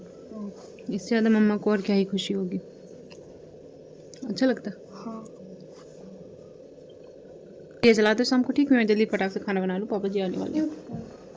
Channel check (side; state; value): both; identical; correlation 1.00